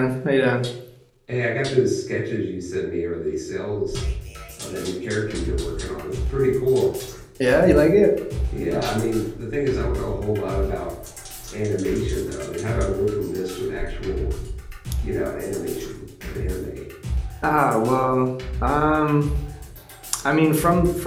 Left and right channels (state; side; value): identical; both; correlation 1.00